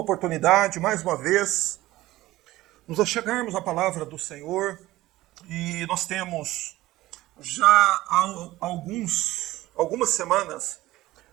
oportunidade, mais uma vez, nos achegarmos à palavra do Senhor, e nós temos já há algumas semanas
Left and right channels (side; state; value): left; quieter; 17.0 dB